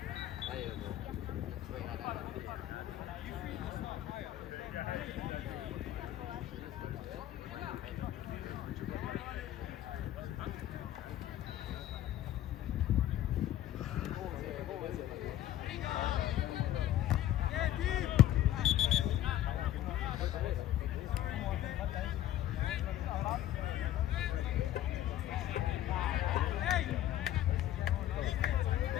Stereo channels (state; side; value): quieter; right; 12.9 dB